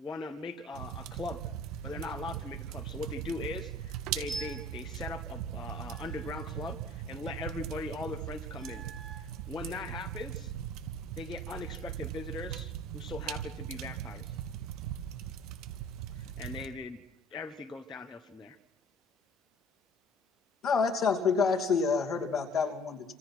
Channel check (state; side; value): normal; both; correlation 0.49